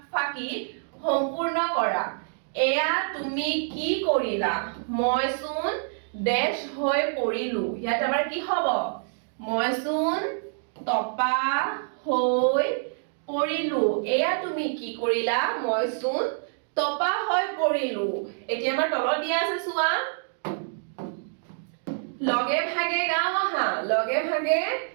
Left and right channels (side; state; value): left; silent; digital silence